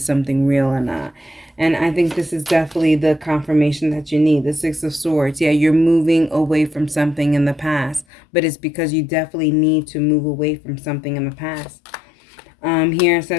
something real or not. And I think this is definitely the confirmation that you need. The Six of Swords. Yeah, you're moving away from something in the past, but it's because you definitely need to move away from something in the past. Here it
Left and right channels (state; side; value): drops out; right; at 8.1 s